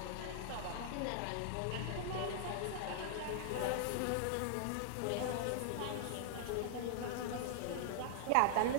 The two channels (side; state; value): both; different; correlation -0.01